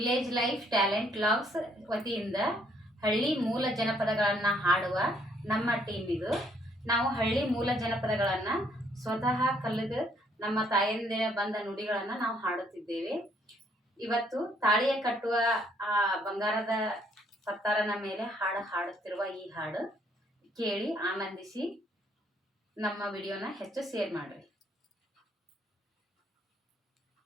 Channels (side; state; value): both; normal; correlation 0.67